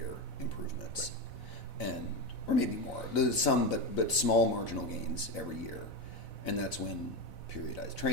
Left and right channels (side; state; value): right; late; 4.0 ms